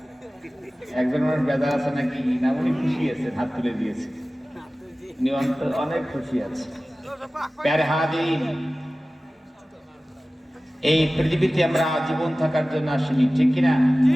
একজন মানুষ বেজার আছে নাকি? না, উনি খুশি আছে, হাত তুলে দিয়েছে। অনেক খুশি আছে। প্যারে হাদিন, এই পৃথিবীতে আমরা জীবন থাকার জন্য আসিনি, ঠিক কিনা?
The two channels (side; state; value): both; normal; correlation 0.97